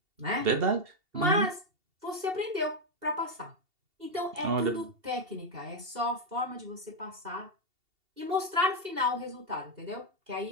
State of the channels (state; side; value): late; left; 2.7 ms